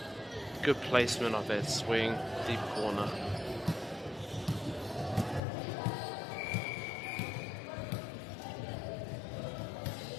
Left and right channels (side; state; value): right; drops out; at 5.4 s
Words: good placement of that swing, deep corner.